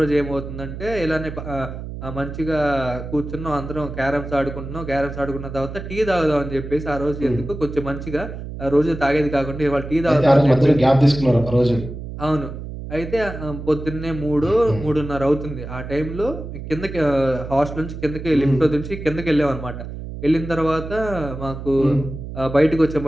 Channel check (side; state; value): right; noise; hum, 9 dB below the sound